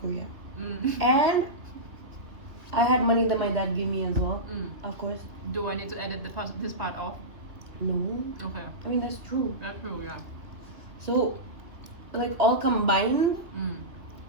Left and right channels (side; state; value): left; late; 2.3 ms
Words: Korea. Mm. And I had money that my dad gave me as well, Mm. of course. Do I need to edit this part off? No, Okay. I mean, that's true. That's true, yeah. So, like, all combined, Mm.